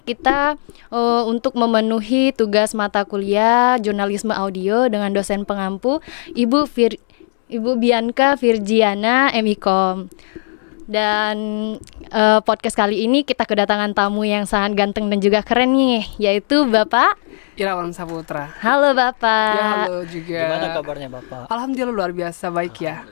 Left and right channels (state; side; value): silent; right; digital silence